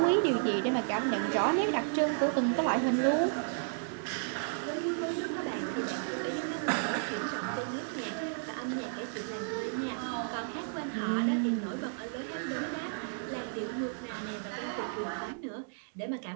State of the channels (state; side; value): silent; left; digital silence